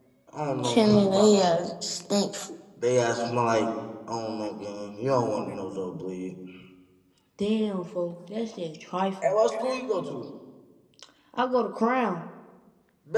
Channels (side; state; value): both; identical; correlation 1.00